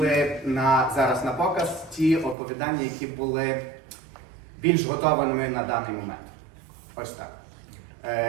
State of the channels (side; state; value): left; drops out; at 2.4 s